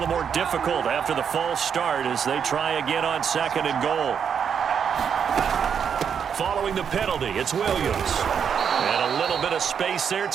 more difficult after the false start as they try again on 2nd and goal. Following the penalty, it's Williams. And a little bit of space there,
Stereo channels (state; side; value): quieter; left; 7.4 dB